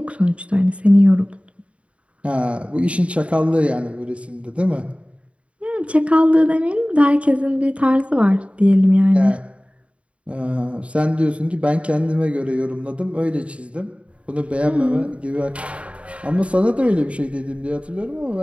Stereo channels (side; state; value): left; late; 0.062 ms